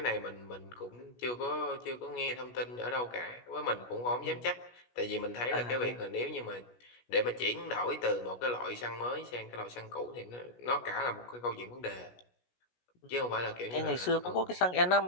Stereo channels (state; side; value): late; right; 16 ms